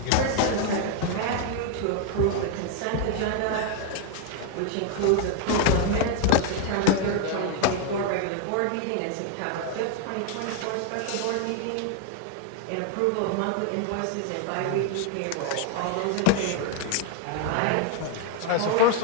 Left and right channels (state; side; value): different; both; correlation 0.00